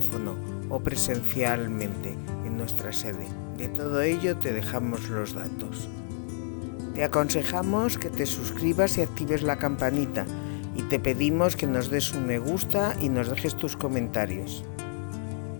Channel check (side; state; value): right; silent; 59 dB below the other